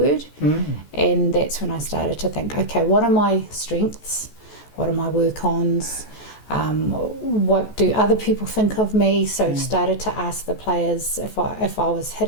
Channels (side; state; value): right; late; 14 ms